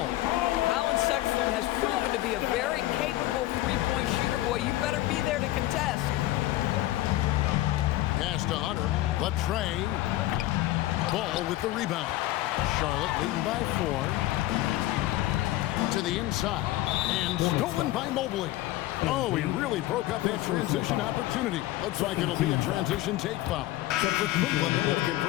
Colin Sexton has proven to be a very capable three-point shooter. Boy, you better be there to contest. Pass to Hunter. Latre. Ball with the rebound. Charlotte leading by 4. To the inside. And stolen by Mobley. Oh, he really broke up that transition opportunity. Looks like it'll be a transition take foul. Except for Cleveland, they have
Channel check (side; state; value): right; quieter; 16.2 dB